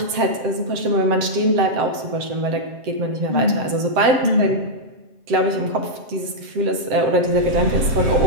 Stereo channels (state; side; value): late; left; 7.8 ms